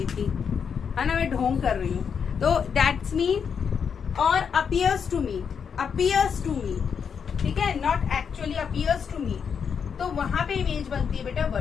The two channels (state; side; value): quieter; right; 6.8 dB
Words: थी, है ना, मैं ढोंग कर रही हूँ, तो दैट्स मीन। और अपीयर्स टू मीट, ठीक है, not actually appears to meet, तो वहां पे इमेज बनती है बेटा